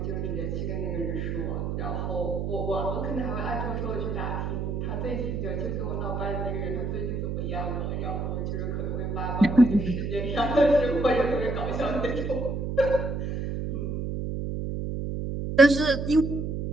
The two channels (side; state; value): right; noise; hum, 2 dB below the sound